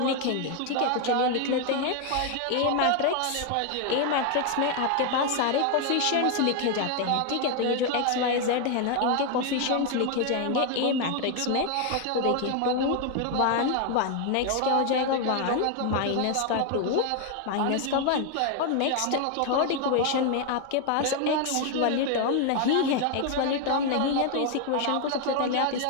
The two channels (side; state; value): both; different; correlation 0.01